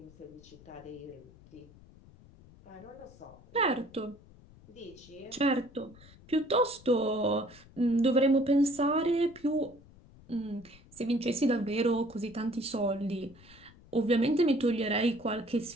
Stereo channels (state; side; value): noise; left; rumble, 23 dB below the sound